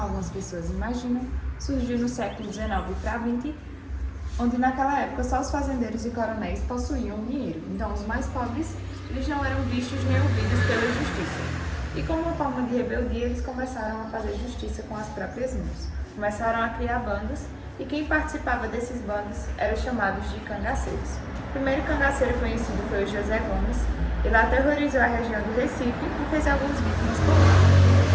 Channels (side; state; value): both; identical; correlation 1.00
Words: pessoas imaginam, surgiu no século XIX para XX, onde naquela época só os fazendeiros e coronéis possuíam dinheiro. Então os mais pobres, eles não eram vistos nem ouvidos pela justiça. E como uma forma de rebeldia, eles começaram a fazer justiça com as próprias mãos. Começaram a criar bandas, e quem participava desses bandos eram chamados de cangaceiros. O primeiro cangaceiro conhecido foi o José Gomes. Ele aterrorizou a região do Recife e fez algumas vítimas por